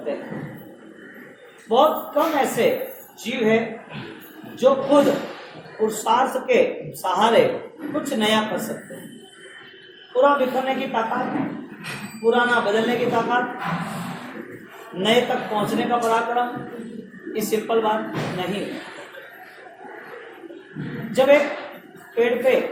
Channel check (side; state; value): both; identical; correlation 1.00